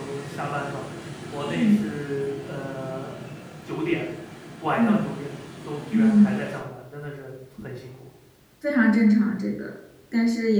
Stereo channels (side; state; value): both; identical; correlation 1.00